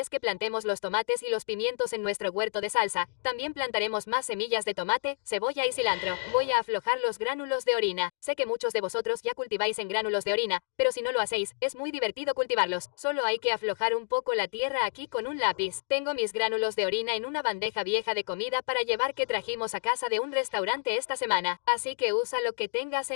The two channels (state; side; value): silent; right; 56 dB below the other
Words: que plantemos los tomates y los pimientos en nuestro huerto de salsa, también plantaremos más semillas de tomate, cebolla y cilantro. Voy a aflojar los gránulos de orina. Sé que muchos de vosotros ya cultiváis en gránulos de orina, pero si no lo hacéis, es muy divertido cultivarlos. Solo hay que aflojar un poco la tierra aquí con un lápiz. Tengo mis gránulos de orina en una bandeja vieja de comida para llevar que trajimos a casa de un restaurante esta semana, así que usa lo que tengas